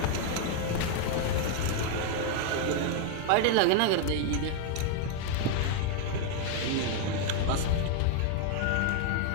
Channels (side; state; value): both; different; correlation 0.01